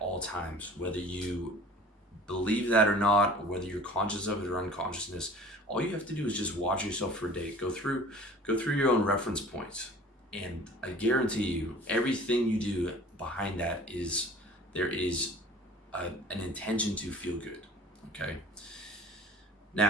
times, whether you believe that or not, or whether you're conscious of it or unconsciousness. All you have to do is just watch yourself for a day. Go through your own reference points, and I guarantee you, everything you do behind that there is an intention to feel good. Okay.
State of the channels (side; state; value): both; normal; correlation 0.45